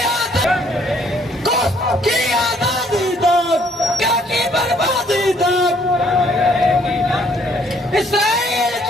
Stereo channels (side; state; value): both; normal; correlation 0.64